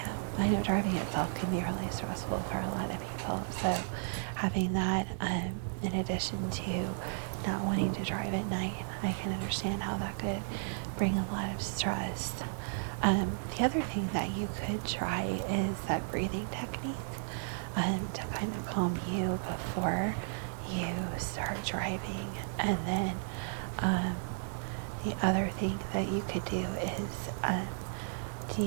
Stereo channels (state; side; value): silent; left; digital silence